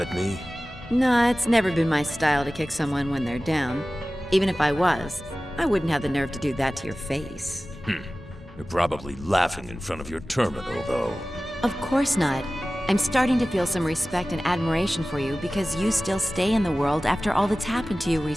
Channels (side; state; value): both; normal; correlation 0.96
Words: me? Nah, it's never been my style to kick someone when they're down. Even if I was, I wouldn't have the nerve to do that to your face. You're probably laughing in front of your terminal, though. Of course not. I'm starting to feel some respect and admiration for you because you still stay in the world after all that's happened to you